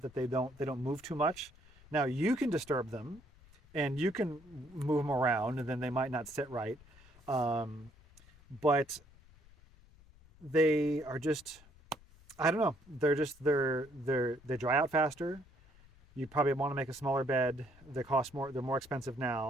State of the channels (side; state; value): left; noise; rumble, 25 dB below the sound